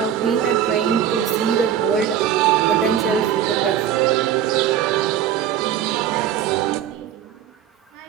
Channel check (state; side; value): quieter; left; 9.8 dB